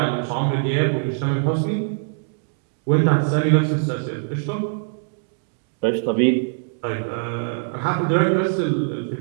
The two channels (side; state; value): left; silent; digital silence